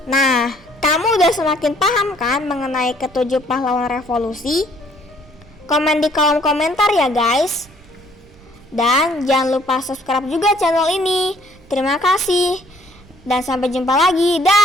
Nah, kamu udah semakin paham kan mengenai ketujuh pahlawan revolusi? Komen di kolom komentar ya guys. Dan jangan lupa subscribe juga channel ini. Terima kasih. Dan sampai jumpa lagi.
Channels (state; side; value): noise; right; rumble, 26 dB below the sound